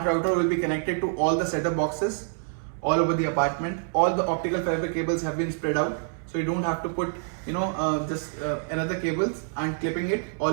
router will be connected to all the setup boxes all over the apartment. All the optical fiber cables have been spread out, so you don't have to put another cables and clipping it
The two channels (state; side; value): silent; left; 60 dB below the other